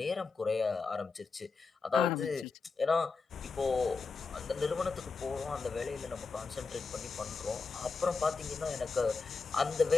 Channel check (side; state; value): right; quieter; 4.5 dB